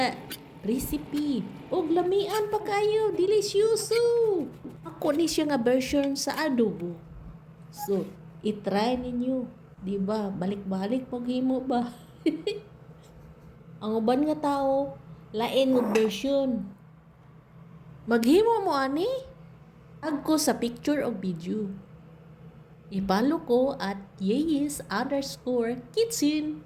recipe. Og lamian pa kayo. Delicioso. Ako ni siya nga version sa adobo. So, itry ninyo. Diba? Balik-balik paghimo ba? Ang uban nga tao, lain ng version. Maghimo mo ani? Tag ko sa picture o video. I-follow ko at yeyes_kitchen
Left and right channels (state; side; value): identical; both; correlation 1.00